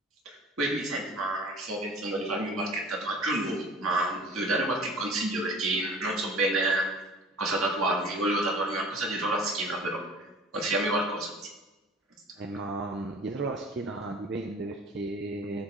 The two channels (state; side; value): normal; both; correlation 0.44